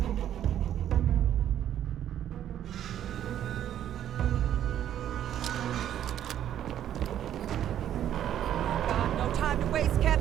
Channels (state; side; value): quieter; left; 10.8 dB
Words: No time to waste,